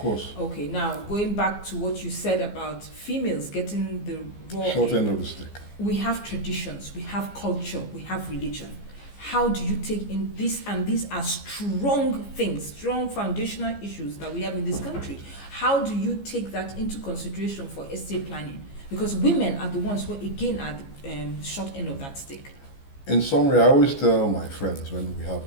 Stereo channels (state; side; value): late; right; 15 ms